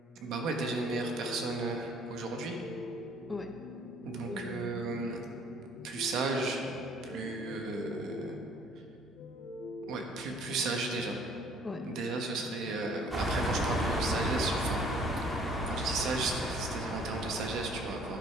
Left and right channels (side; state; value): both; normal; correlation 0.57